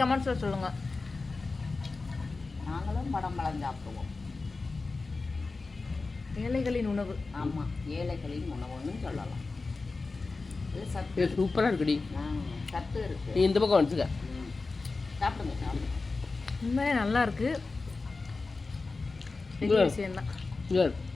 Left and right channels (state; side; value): quieter; right; 3.8 dB